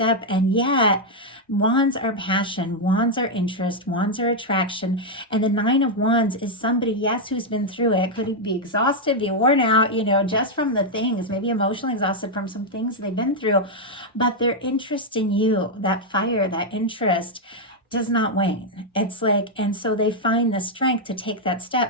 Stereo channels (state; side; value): normal; both; correlation -0.01